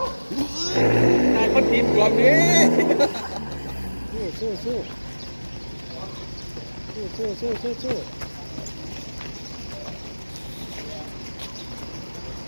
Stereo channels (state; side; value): inverted; both; correlation -1.00